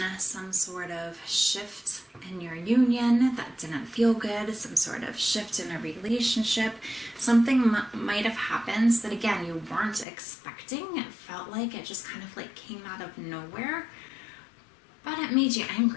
some sort of shift in your union that didn't feel good, some sort of shift in a relationship. Something might have happened that, again, you weren't expecting. It felt like it just kind of like came out of nowhere, but it made you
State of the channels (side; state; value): right; drops out; at 10.1 s